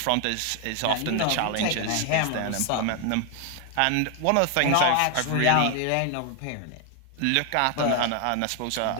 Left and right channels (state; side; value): different; both; correlation 0.00